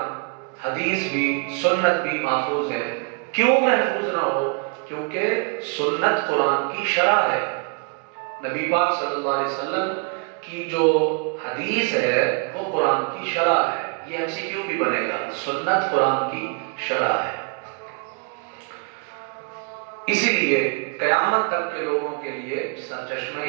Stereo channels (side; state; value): left; quieter; 36.4 dB